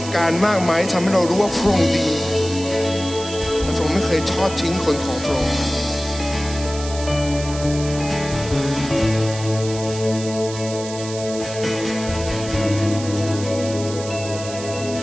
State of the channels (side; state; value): right; noise; hiss, 11 dB below the sound